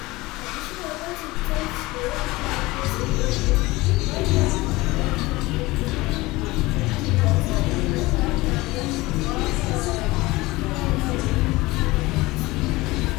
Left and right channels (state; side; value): quieter; right; 20.7 dB